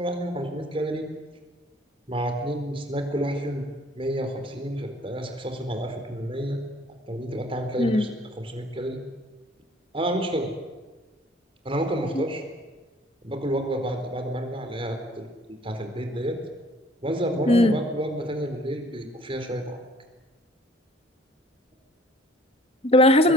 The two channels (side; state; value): both; normal; correlation 0.55